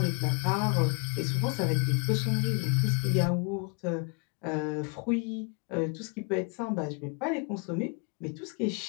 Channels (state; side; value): quieter; right; 35.9 dB